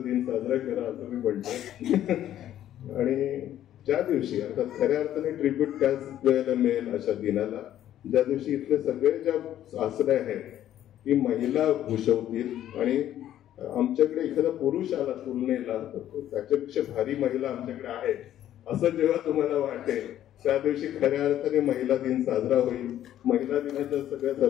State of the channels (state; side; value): quieter; right; 11.9 dB